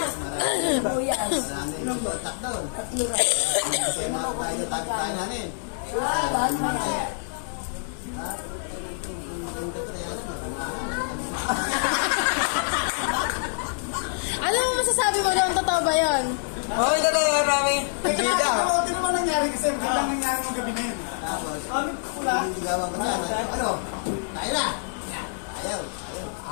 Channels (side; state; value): right; silent; 61 dB below the other